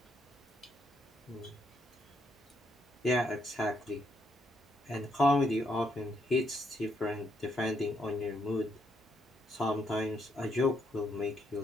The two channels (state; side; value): normal; both; correlation 0.76